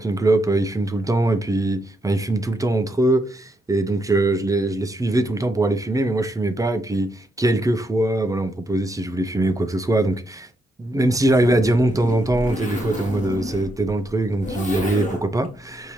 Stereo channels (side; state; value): both; normal; correlation 0.79